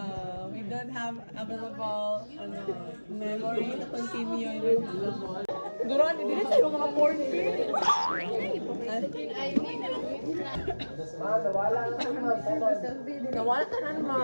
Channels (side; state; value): both; inverted; correlation -1.00